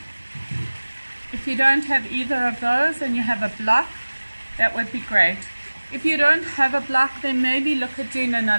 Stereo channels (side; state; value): both; inverted; correlation -1.00